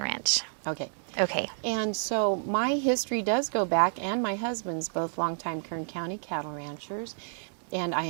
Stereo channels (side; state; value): left; silent; 58 dB below the other